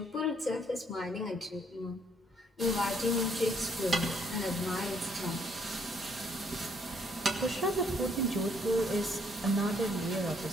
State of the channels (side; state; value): both; normal; correlation 0.68